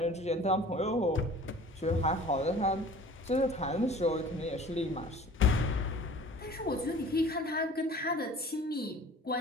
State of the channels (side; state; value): both; normal; correlation 0.46